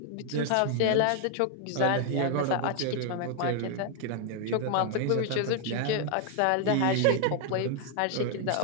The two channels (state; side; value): different; both; correlation 0.00